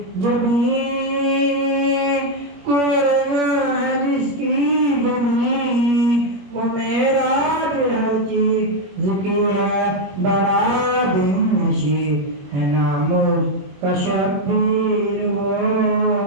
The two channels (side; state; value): left; late; 21 ms